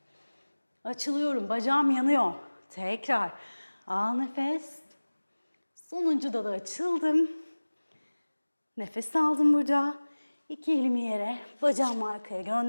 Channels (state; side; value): inverted; both; correlation -1.00